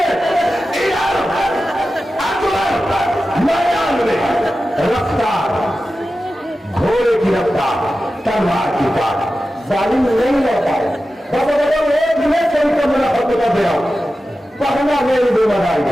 अकबर मैदान में रफ्तार, घोड़े की रफ्तार, तलवार की तार, जालिम नहीं रह पाए। एक मिनट से उनको मेरा हक बता दे रहा हूं, पढ़ना मेरी जिम्मेदारी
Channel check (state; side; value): normal; both; correlation 0.93